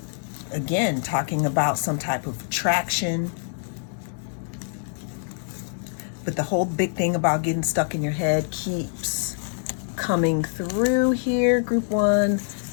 again, talking about some type of attraction. But the whole big thing about getting stuck in your head keeps coming through here, group one.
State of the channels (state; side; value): silent; right; 61 dB below the other